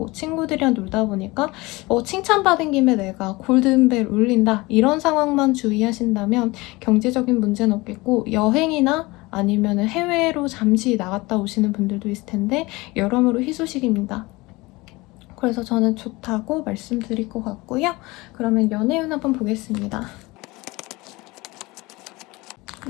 친구들이랑 놀다 보니까 칭찬받은 김에 내가 골든벨 울린다 이런 상황만 주의하신다면 경제적인 문제는 없겠고, 여행이나 아니면 해외로 잠시 나갔다 오시는 분들도 있을 텐데 여러모로 희소식입니다. 그래서 저는 좋다고 말씀드릴 것 같고요. 그러면 연애운 한번 보겠습니다.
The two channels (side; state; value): right; quieter; 22.4 dB